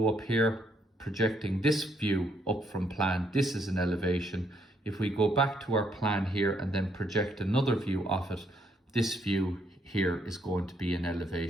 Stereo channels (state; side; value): normal; both; correlation 0.72